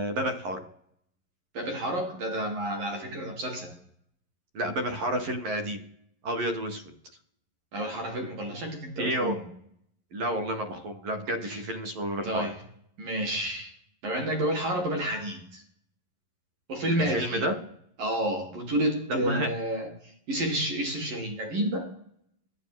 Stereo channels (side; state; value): left; late; 11 ms